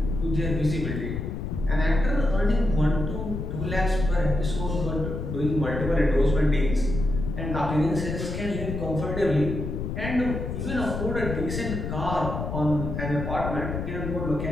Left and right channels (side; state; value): left; noise; rumble, 4 dB below the sound